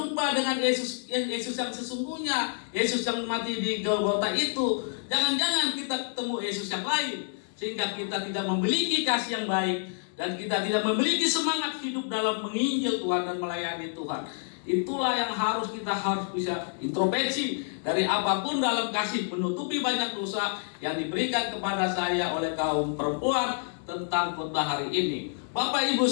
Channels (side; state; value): right; silent; digital silence